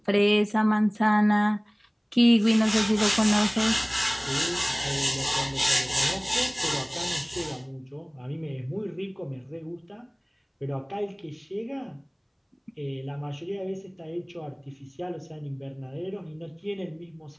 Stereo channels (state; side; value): identical; both; correlation 1.00